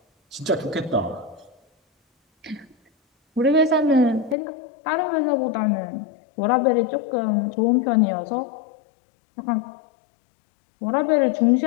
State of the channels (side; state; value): right; drops out; at 4.4 s